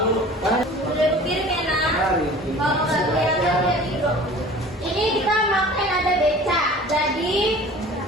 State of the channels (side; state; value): both; normal; correlation 0.44